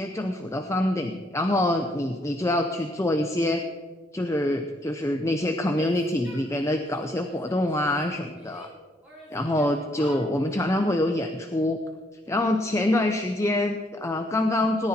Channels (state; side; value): normal; both; correlation 0.70